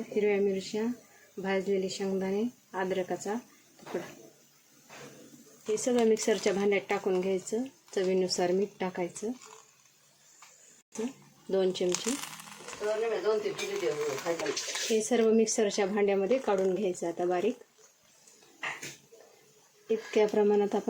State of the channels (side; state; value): both; identical; correlation 1.00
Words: हिरव्या मिरच्या, भाजलेले शेंगदाणे, अद्रकाचा तुकडा. हे सगळं मिक्सरच्या भांड्यात टाकून घ्यायचं. चवीनुसार मीठ टाकायचं, 2 चमचे. हे सर्व मिक्सरच्या भांड्यामध्ये काढून घ्यायचं आता बारीक. इतक्या प्रमाणात